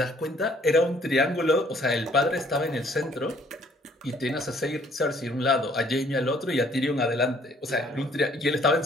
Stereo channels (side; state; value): both; normal; correlation 0.61